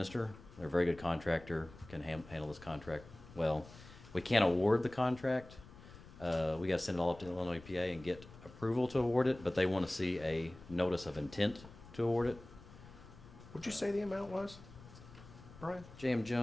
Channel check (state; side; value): noise; left; rumble, 19 dB below the sound